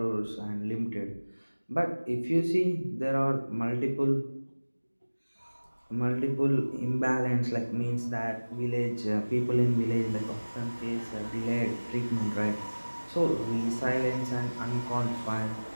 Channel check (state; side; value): inverted; both; correlation -1.00